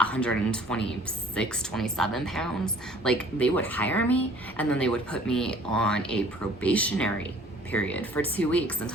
27 pounds, like, they would hire me and then they would put me on a probationary period for 2 weeks and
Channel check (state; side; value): normal; both; correlation 0.53